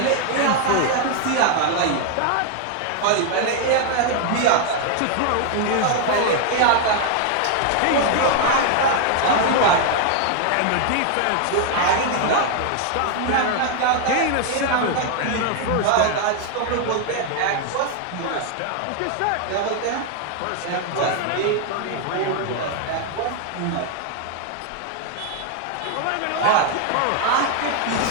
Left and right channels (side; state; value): both; different; correlation 0.00